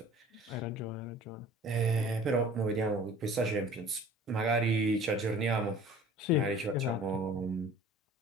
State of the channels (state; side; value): normal; both; correlation 0.47